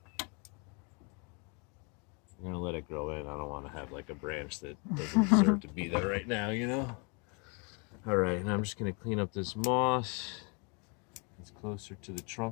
I'm gonna let it grow in. I don't want to have like a branch that doesn't deserve to be there right now, you know? All right, and I'm just gonna clean up this moss. It's closer to the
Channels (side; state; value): right; quieter; 33.7 dB